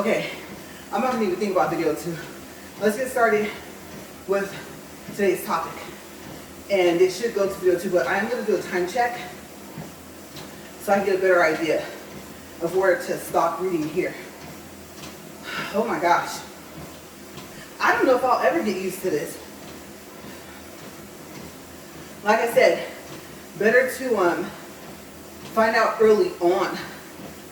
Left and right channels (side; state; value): both; identical; correlation 1.00